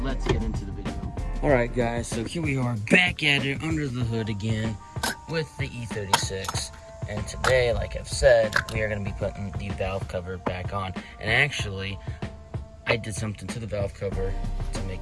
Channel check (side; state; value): both; identical; correlation 1.00